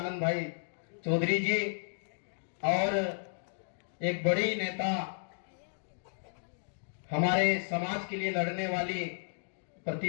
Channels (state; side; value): silent; right; digital silence